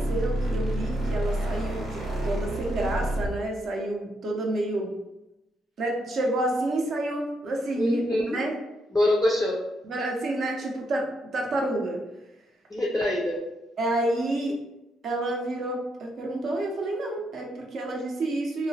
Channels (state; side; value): normal; both; correlation 0.79